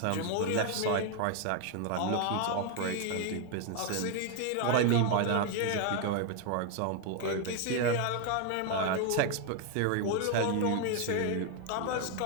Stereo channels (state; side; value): different; both; correlation 0.01